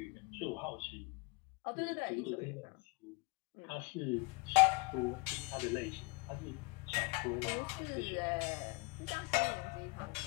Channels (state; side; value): quieter; right; 26.7 dB